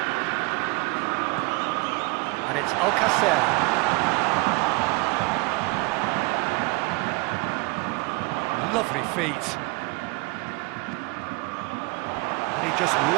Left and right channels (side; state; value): left; quieter; 25.5 dB